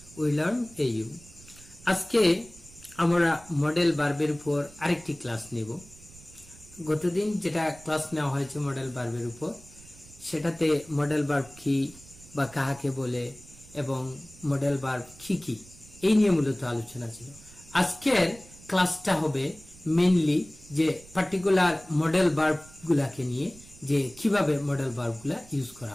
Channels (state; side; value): noise; right; rumble, 22 dB below the sound